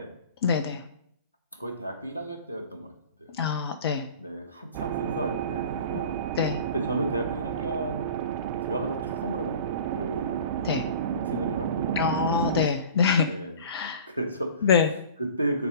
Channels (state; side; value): inverted; both; correlation -0.41